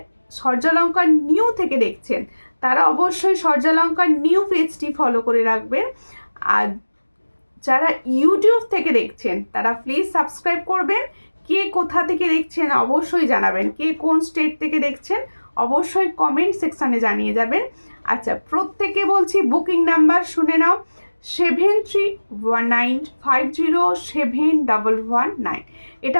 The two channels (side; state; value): both; inverted; correlation -1.00